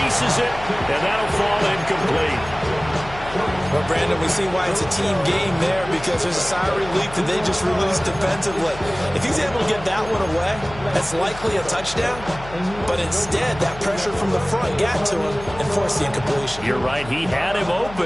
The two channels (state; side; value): noise; left; hum, 15 dB below the sound